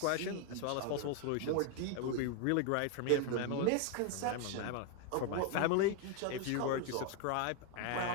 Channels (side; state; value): both; different; correlation 0.01